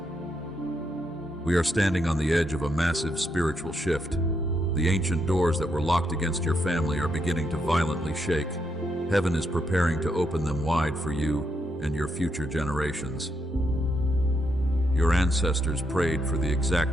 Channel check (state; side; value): normal; both; correlation 0.79